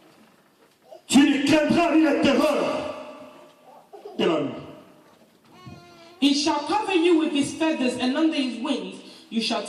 Tu ne craindras ni la terreur de la nuit. He shall cover you with his feathers, and under his wings you shall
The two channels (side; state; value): both; identical; correlation 1.00